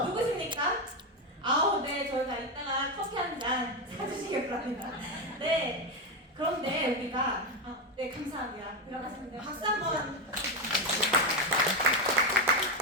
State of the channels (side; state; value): both; normal; correlation 0.09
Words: 누구십니까? 네. 저희가 이따가 커피 한 잔 사주시길 바랍니다. 네. 그런데 우리가 네, 감사합니다. 들어가시면 돼요. 박수 한번.